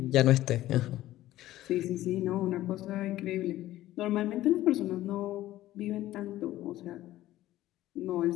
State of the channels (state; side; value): quieter; right; 14.9 dB